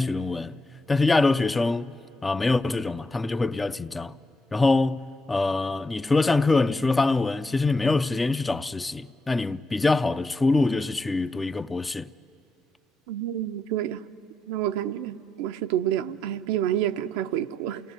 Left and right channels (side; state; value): both; normal; correlation 0.82